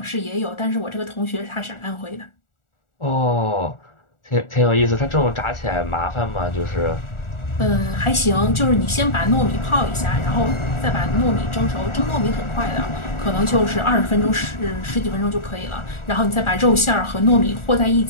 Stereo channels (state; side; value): late; right; 1.4 ms